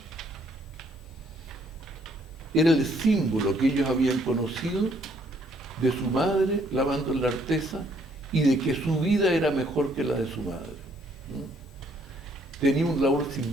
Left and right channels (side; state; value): both; normal; correlation 0.67